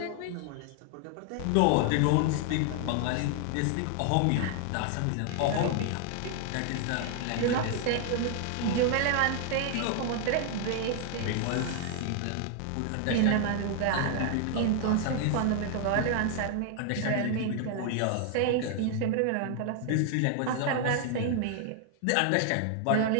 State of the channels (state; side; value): different; both; correlation 0.00